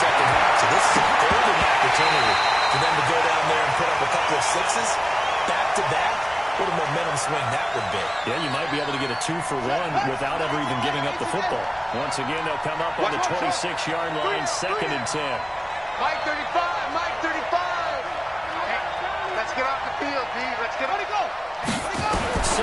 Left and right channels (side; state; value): both; identical; correlation 1.00